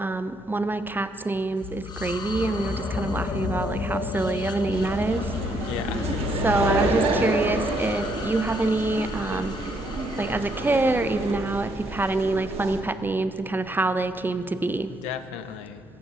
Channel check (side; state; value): both; normal; correlation 0.72